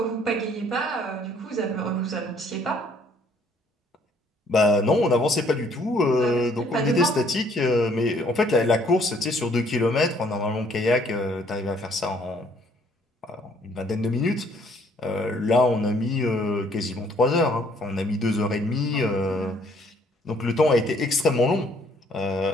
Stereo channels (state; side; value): normal; both; correlation 0.63